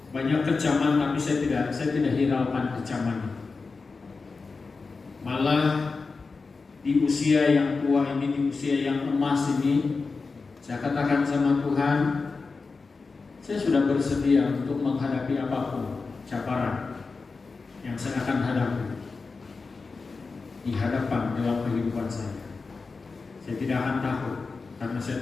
banyak kecaman, tapi saya tidak hiraukan kecaman. Malah di usia yang tua ini, di usia yang emas ini, saya katakan sama Tuhan, saya sudah bersedia untuk menghadapi apapun cabaran yang saya akan hadapi di hadapan dalam kehidupan saya. Saya tidak akan takut karena saya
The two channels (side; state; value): right; quieter; 4.3 dB